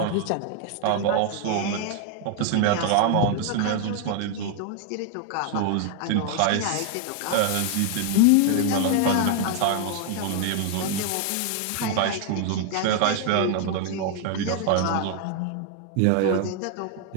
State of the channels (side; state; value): both; different; correlation 0.00